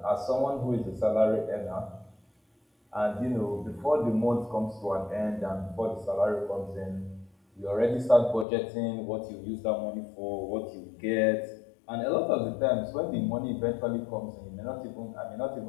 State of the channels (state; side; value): drops out; right; at 8.5 s